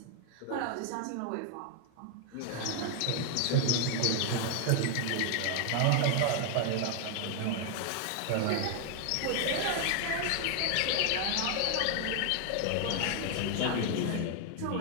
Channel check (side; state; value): both; different; correlation 0.00